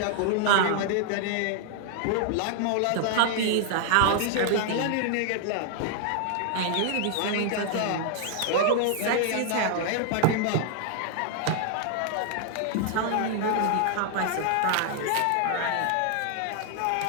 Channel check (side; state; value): both; different; correlation 0.00